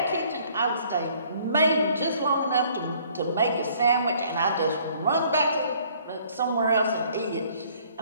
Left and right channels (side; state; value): both; inverted; correlation -0.59